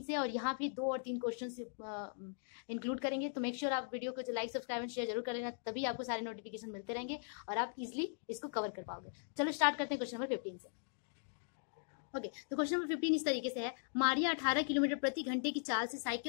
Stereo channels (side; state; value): right; silent; digital silence